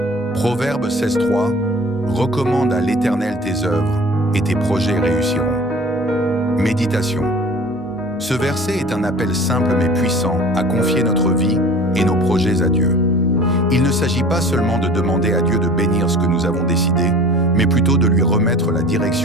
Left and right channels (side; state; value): both; normal; correlation 0.44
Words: Proverbe 16.3 recommande à l'Éternel tes œuvres et tes projets réussiront. Méditation. Ce verset est un appel simple mais puissant à confier notre vie et nos projets à Dieu. Il ne s'agit pas seulement de demander à Dieu de bénir ce que nous avons décidé, mais plutôt de lui remettre la